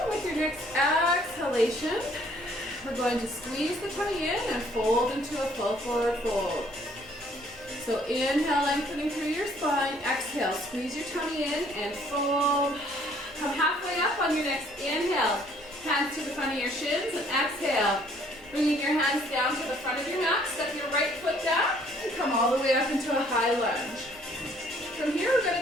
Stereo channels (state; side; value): normal; both; correlation 0.61